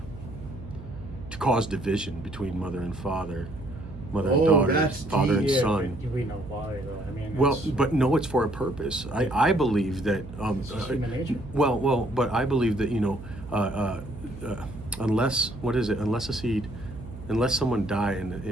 to cause division between mother and father, mother and daughter, father and son. We know why, though. I mean, But no, it's for a purpose. I believe that. It's human nature. But I believe that, you know, unless someone die and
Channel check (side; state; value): right; noise; hum, 14 dB below the sound